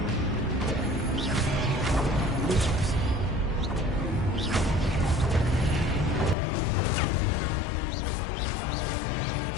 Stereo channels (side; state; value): right; drops out; at 6.4 s